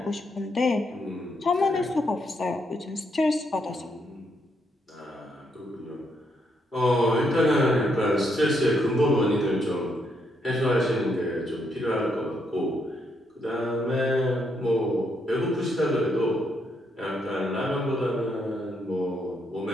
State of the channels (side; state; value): both; normal; correlation 0.76